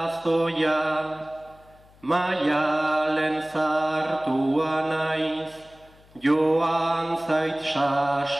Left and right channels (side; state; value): left; noise; hum, 27 dB below the sound